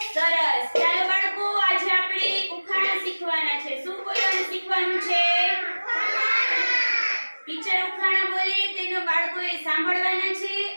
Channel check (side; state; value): both; inverted; correlation -1.00